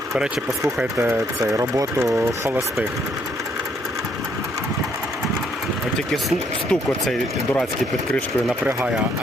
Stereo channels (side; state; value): both; normal; correlation 0.69